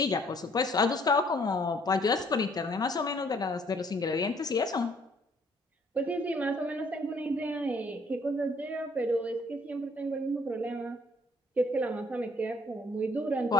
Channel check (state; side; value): normal; both; correlation 0.62